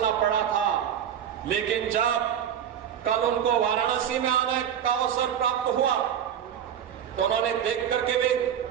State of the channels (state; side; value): quieter; left; 9.2 dB